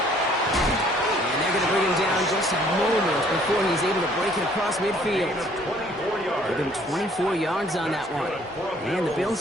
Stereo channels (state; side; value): normal; both; correlation 0.60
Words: they're going to bring him down just a moment before he's able to break it across midfield. Give him 24 yards on that one. And the